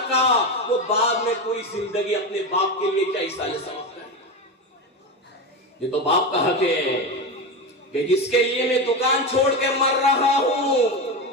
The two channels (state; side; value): normal; both; correlation 0.18